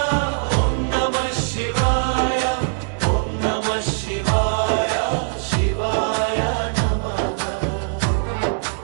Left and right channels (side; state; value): left; silent; 65 dB below the other